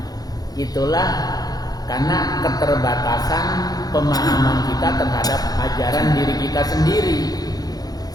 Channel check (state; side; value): late; right; 0.19 ms